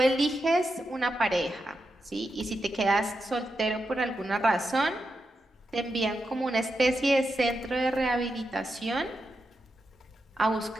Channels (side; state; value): both; normal; correlation 0.87